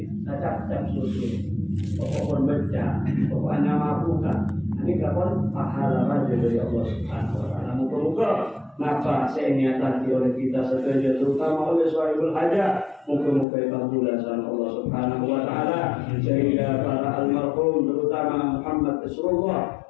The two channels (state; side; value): drops out; right; at 13.5 s